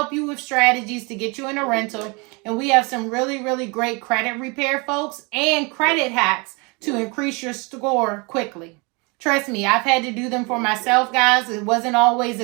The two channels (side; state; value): left; quieter; 29.5 dB